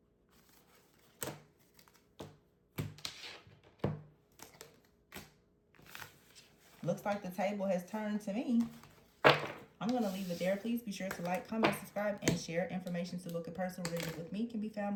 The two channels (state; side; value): identical; both; correlation 1.00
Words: looks like the table has turned to me. I'm going to leave it there. Please be sure to like, comment, subscribe, and share. Information to book a personal reading with me can be